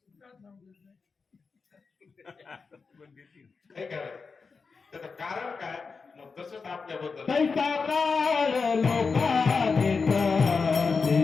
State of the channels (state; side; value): quieter; right; 4.9 dB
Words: त्याचं कारण काय मग तसंच आपल्याबद्दल